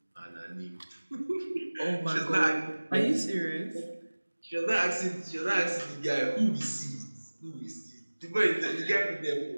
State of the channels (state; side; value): inverted; both; correlation -1.00